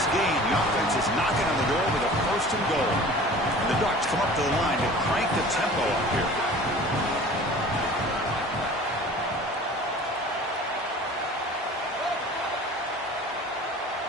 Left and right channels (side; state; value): both; normal; correlation 0.43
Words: gain. The offense is knocking on the door with a 1st and goal. And the Ducks come up to the line to crank the tempo up here.